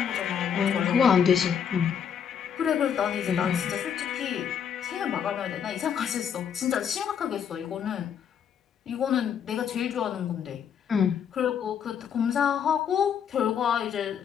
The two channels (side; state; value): right; quieter; 8.0 dB